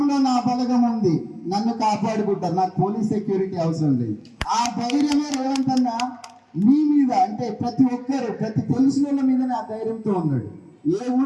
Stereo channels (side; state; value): both; identical; correlation 1.00